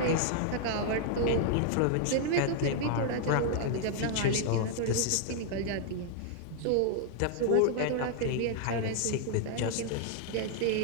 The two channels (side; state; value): both; different; correlation 0.00